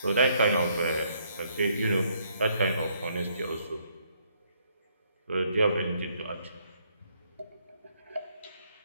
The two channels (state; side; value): inverted; both; correlation -0.69